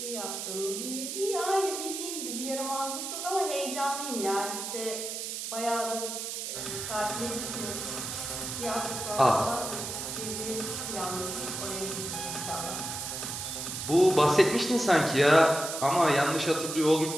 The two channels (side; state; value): right; noise; hiss, 5 dB below the sound